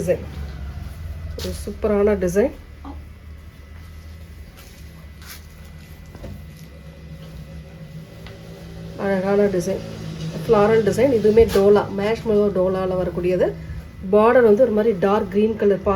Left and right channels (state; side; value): identical; both; correlation 1.00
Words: ஒரு சூப்பரான டிசைன். அழகான டிசைன், ஃப்ளாரல் டிசைன். இதுவுமே டோலா, மேஷ் மெலோ டோலாவில் வரக்கூடியது. பார்டர் வந்து ஒரு மாதிரி டார்க் க்ரீன் கலர்